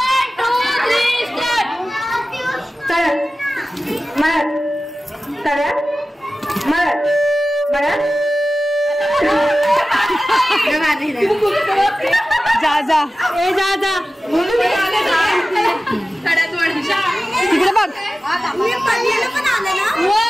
जा जा, ए जा जा. तिकडे बघ.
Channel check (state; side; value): normal; both; correlation 0.95